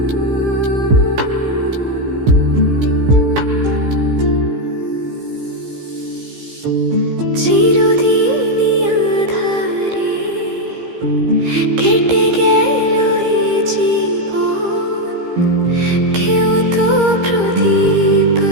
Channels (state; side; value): late; left; 15 ms